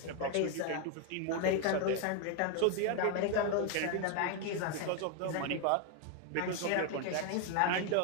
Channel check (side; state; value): both; different; correlation 0.01